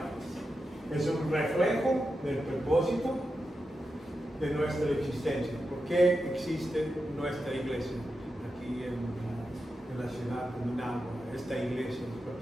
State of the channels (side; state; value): both; normal; correlation 0.89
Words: Es un reflejo del propósito de nuestra existencia. ¿Por qué existe nuestra iglesia aquí en la ciudad de Managua, esta iglesia en